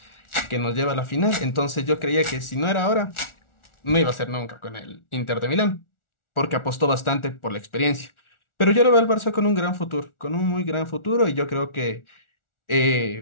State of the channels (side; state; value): right; late; 1.4 ms